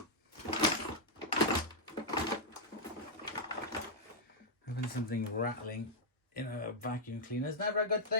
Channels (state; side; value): normal; both; correlation -0.05